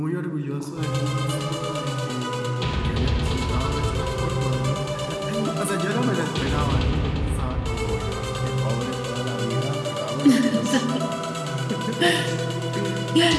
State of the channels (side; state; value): both; identical; correlation 1.00